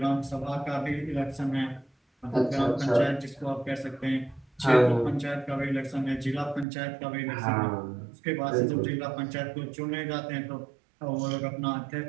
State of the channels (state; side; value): drops out; left; at 6.7 s